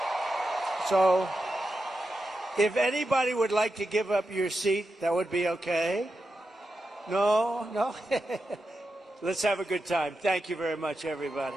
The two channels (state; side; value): normal; both; correlation 0.89